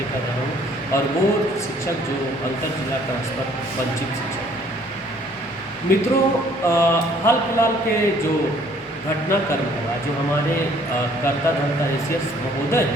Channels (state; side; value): normal; both; correlation 0.60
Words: कर रहा हूँ और वो शिक्षक जो अंतर जिला ट्रांसफर वंचित शिक्षक हैं। मित्रों, हाल फिलहाल के जो घटनाक्रम हुआ, जो हमारे कर्ता धर्ता एसीएस महोदय